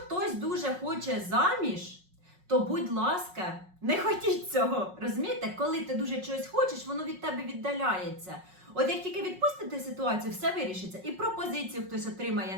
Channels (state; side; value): late; left; 5.5 ms